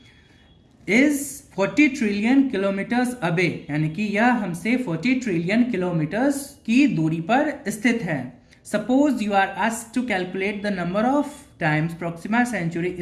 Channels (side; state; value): both; identical; correlation 1.00